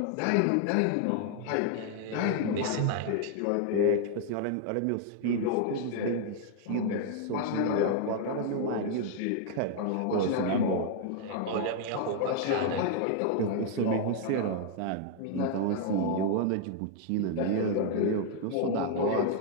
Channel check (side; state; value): both; different; correlation 0.00